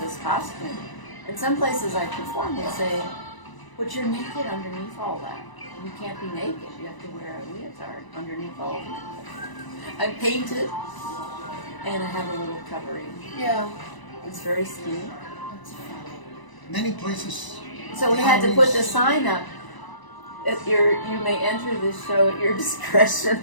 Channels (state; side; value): late; right; 1.0 ms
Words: this costume. In some places I perform, they say, "But you're naked underneath all that. You can't be naked. You have to wear a leotard underneath all of that." I paint it, and I have a little covering. Yeah. It's very skinny. Many places. So we had to put the sign up. You may enter this show at your discretion.